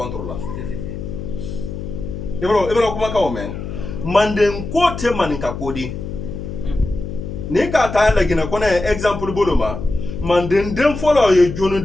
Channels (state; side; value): noise; left; hum, 7 dB below the sound